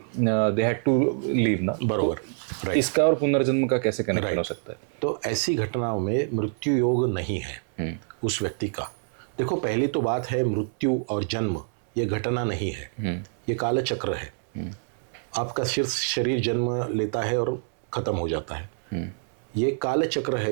दे हैड टू लीव ना। बरोबर, तो इसका और पुनर्जन्म का कैसे कनेक्शन हो सकता है? तो ऐसी घटनाओं में मृत्यु योग नहीं है उस व्यक्ति का। देखो, पहली तो बात है, मृत्यु और जन्म ये घटना नहीं है, ये काल चक्र है। आपका शरीर जन्म लेता है और खत्म हो जाता है। ये काल चक्र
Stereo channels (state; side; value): silent; left; digital silence